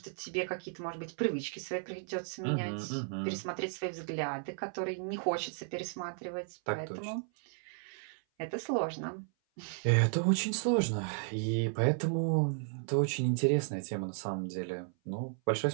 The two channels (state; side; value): silent; left; 55 dB below the other